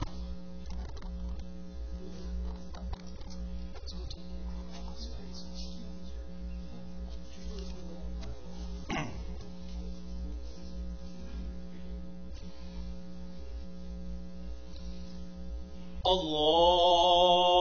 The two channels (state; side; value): identical; both; correlation 1.00